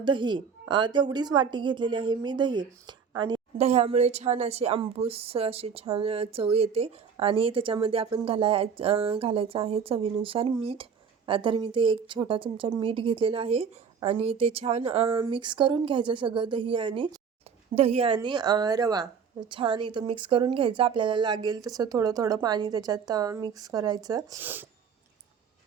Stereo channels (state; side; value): quieter; left; 6.5 dB